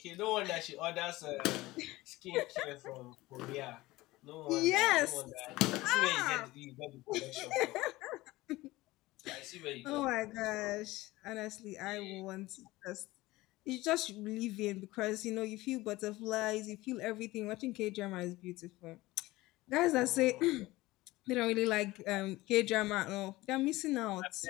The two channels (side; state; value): right; quieter; 19.1 dB